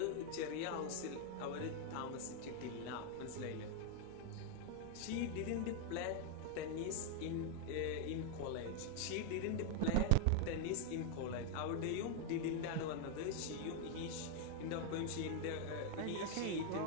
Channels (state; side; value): different; both; correlation 0.00